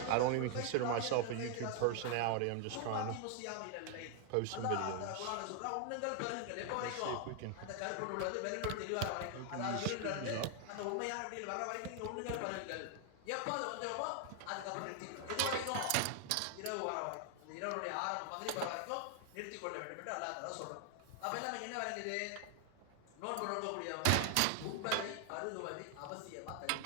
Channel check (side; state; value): both; different; correlation 0.00